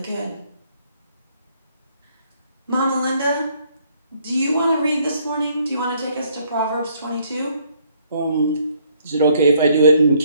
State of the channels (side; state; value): both; inverted; correlation -0.66